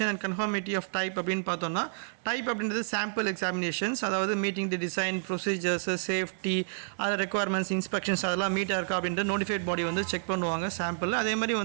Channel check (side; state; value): left; silent; 58 dB below the other